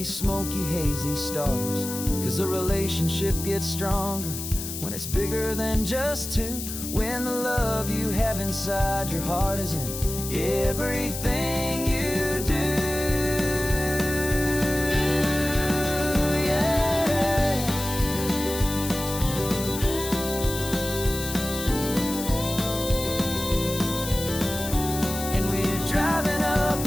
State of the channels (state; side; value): noise; left; hiss, 7 dB below the sound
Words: smoky, hazy stars. 'Cause a relationship gets stronger when it's bigger than just two. When the love you have inside your heart is in everything you do.